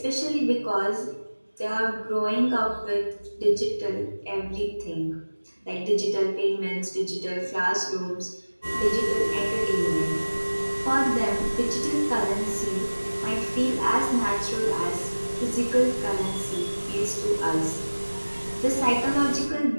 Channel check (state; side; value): inverted; both; correlation -1.00